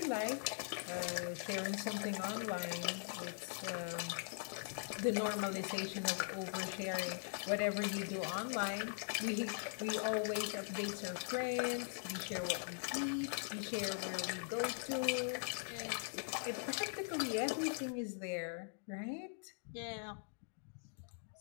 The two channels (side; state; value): right; silent; digital silence